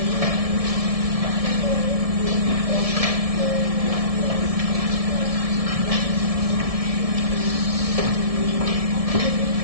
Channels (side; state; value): left; late; 1.7 ms